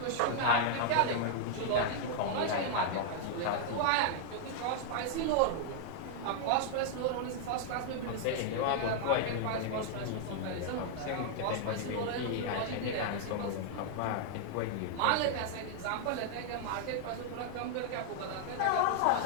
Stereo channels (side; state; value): both; different; correlation -0.01